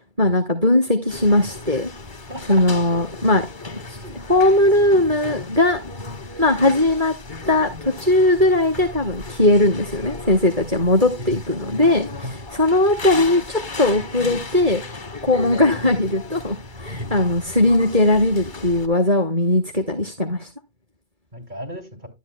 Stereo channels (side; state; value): left; late; 2.3 ms